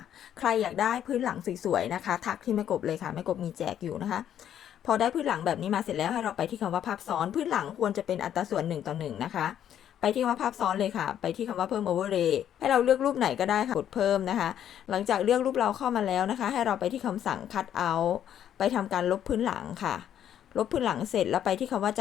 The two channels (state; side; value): quieter; right; 10.2 dB